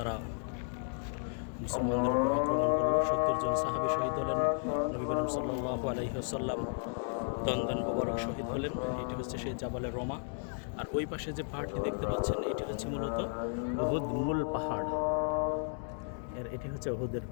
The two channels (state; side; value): silent; right; 55 dB below the other